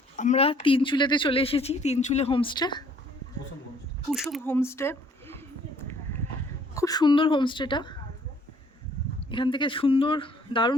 আমরা তিনচুলেতে চলে এসেছি, তিনচুলে হোমস্টে, কুসুম হোমস্টে। খুব সুন্দর হোমস্টেটা, এখান থেকে সুন্দর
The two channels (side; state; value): both; normal; correlation 0.61